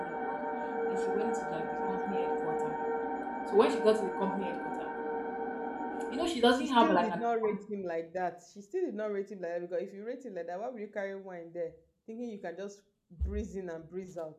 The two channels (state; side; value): identical; both; correlation 1.00